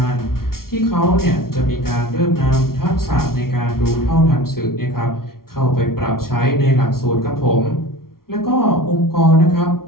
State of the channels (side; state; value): right; late; 0.93 ms